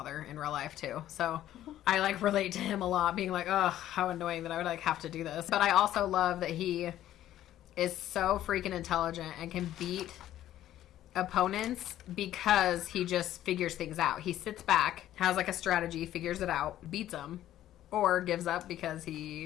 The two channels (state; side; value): quieter; right; 12.7 dB